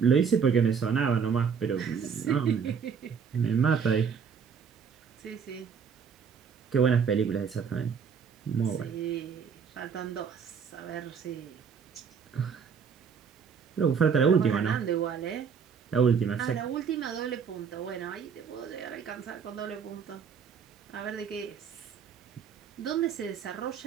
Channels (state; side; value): quieter; left; 6.6 dB